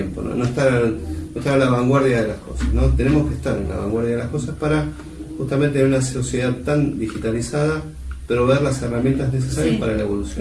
no estar a la vanguardia de las cosas, ¿no? Tenemos que estar en la vanguardia de las cosas para justamente en una sociedad tan digitalizada, pero ver las herramientas necesarias para la evolución.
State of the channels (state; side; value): identical; both; correlation 1.00